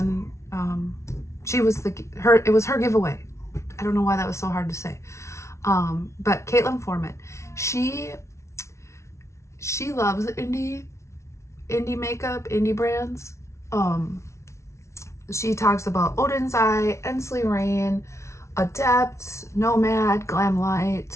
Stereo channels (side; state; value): right; late; 0.13 ms